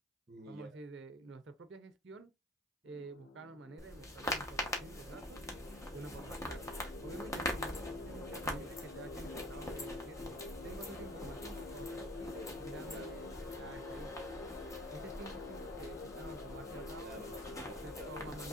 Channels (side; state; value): both; normal; correlation 0.46